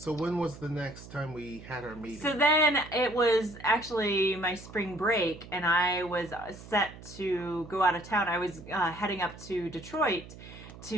was the next time we had our meeting? So then it was actually my spring break, and I was set to go out of town. I was heading up to Detroit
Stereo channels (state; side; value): noise; right; hum, 16 dB below the sound